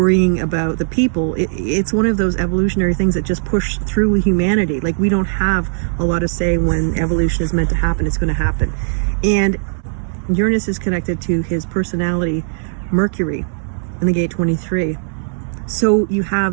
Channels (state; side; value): silent; left; 61 dB below the other